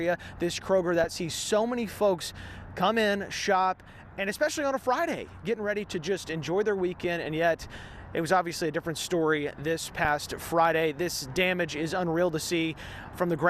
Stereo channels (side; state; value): both; identical; correlation 1.00